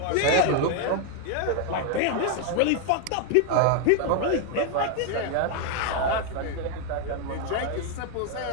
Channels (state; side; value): different; both; correlation 0.00